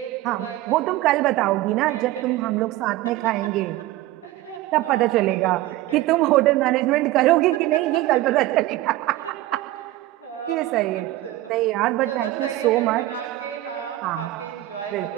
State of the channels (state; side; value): quieter; left; 16.3 dB